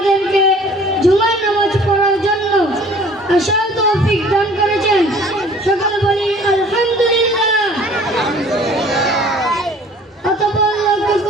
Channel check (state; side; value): normal; both; correlation 0.51